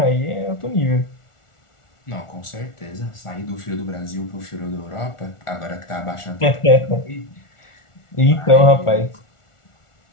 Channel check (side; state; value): right; late; 1.4 ms